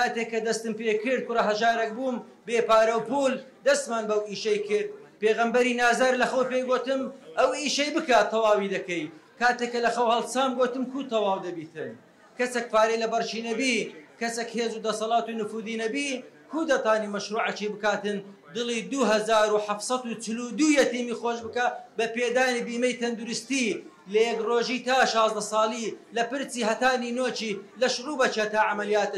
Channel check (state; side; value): identical; both; correlation 1.00